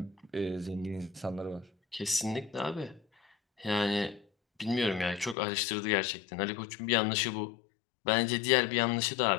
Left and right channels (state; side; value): drops out; right; at 5.4 s